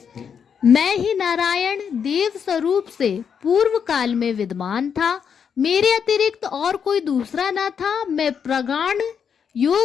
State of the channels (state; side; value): quieter; right; 7.2 dB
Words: मैं ही नारायण देव स्वरूप से पूर्व काल में विद्यमान था, मेरे अतिरिक्त और कोई दूसरा न था। मैं प्रगाढ़